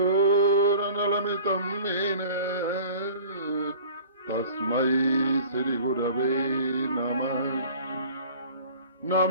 येन तस्मै श्रीगुरवे नमः।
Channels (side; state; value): both; inverted; correlation -0.45